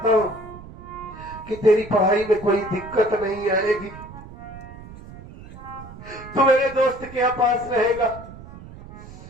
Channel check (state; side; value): noise; right; rumble, 16 dB below the sound